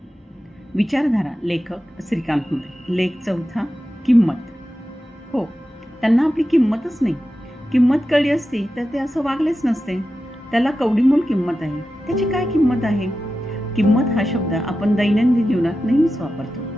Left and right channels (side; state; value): both; normal; correlation 0.92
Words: विचारधारा लेखक श्रीकांत मोरे. लेख चौथा. किंमत. हो, त्यांना आपली किंमतच नाही. किंमत कळली असती तर ते असं वागलेच नसते. त्याला कवडीमोल किंमत आहे. त्याची काय किंमत आहे? किंमत हा शब्द आपण दैनंदिन जीवनात नेहमीच वापरतो.